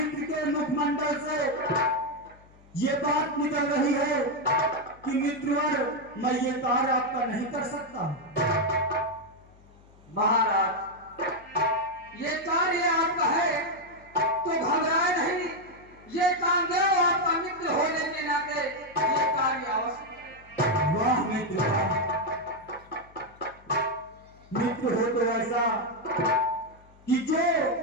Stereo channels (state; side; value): noise; left; hum, 26 dB below the sound